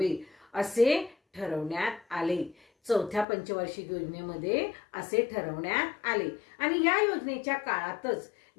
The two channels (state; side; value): drops out; right; at 3.2 s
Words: असे ठरवण्यात आले. चौथ्या पंचवार्षिक योजनेमध्ये असे ठरवण्यात आले. आणि या योजनेच्या काळातच